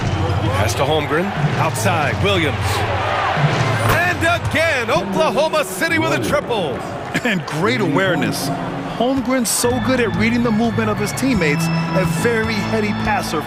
Pass to Holmgren. Outside, Williams. And again, Oklahoma City with a triple. And great awareness. Holmgren's so good at reading the movement of his teammates, a very heady passer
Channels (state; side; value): identical; both; correlation 1.00